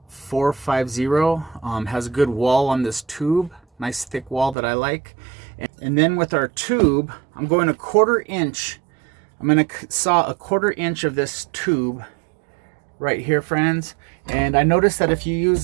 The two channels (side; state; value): left; drops out; at 4.5 s